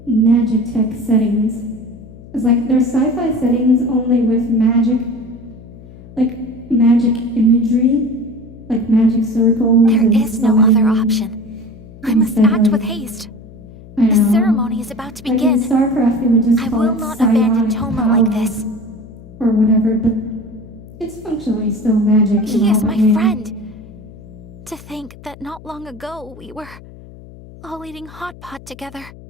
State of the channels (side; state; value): left; noise; hum, 19 dB below the sound